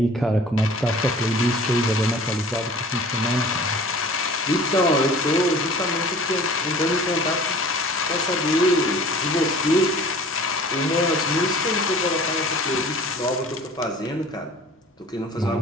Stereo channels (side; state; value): both; normal; correlation 0.46